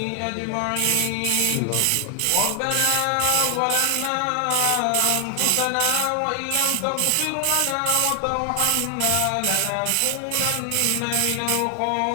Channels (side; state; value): both; different; correlation 0.00